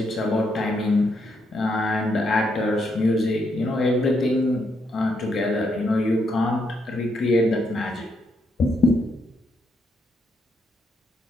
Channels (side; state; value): both; normal; correlation 0.77